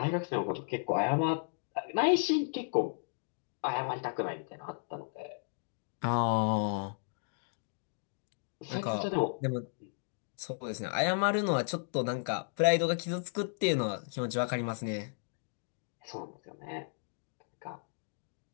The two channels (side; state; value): right; silent; digital silence